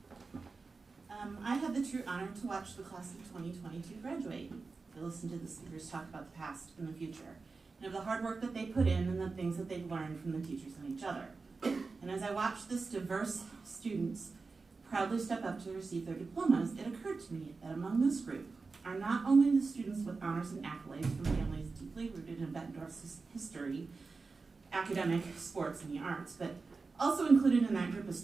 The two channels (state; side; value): quieter; left; 4.2 dB